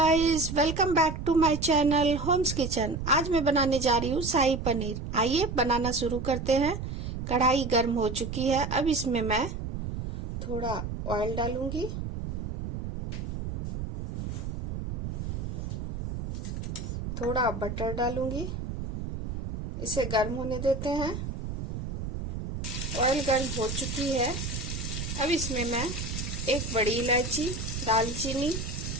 welcome back to my channel homes kitchen. आज मैं बनाने जा रही हूँ शाही पनीर। आइए बनाना शुरू करते हैं। कढ़ाई गर्म हो चुकी है। अब इसमें मैं थोड़ा ऑयल डालूंगी, थोड़ा बटर डालूंगी। इसे गर्म होने देते हैं। ऑयल गर्म हो चुकी है। अब इसमें मैं एक बड़ी इलायची, दालचीनी,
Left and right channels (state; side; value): noise; right; rumble, 5 dB below the sound